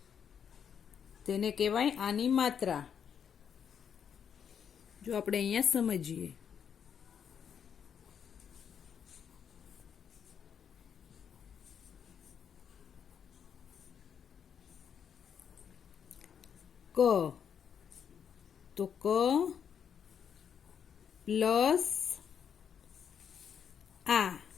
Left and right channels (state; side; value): quieter; right; 7.8 dB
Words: તેને કહેવાય આની માત્રા. જો આપણે અહીંયા સમજીએ, ક તો ક પ્લસ આ